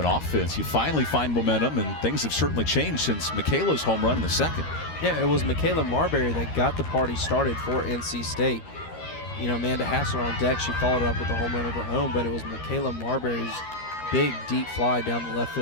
offense. You finally find momentum, and things have certainly changed since Michaela's home run in the 2nd. Yeah, it was Michaela Marbury that got the party started for NC State. You know, Amanda Hassler on deck, she followed up with a home run of her own, but it was Michaela Marbury's big deep fly down the left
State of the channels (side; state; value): right; late; 13 ms